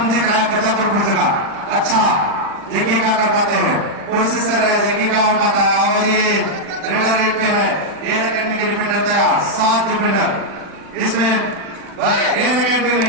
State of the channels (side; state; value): left; late; 40 ms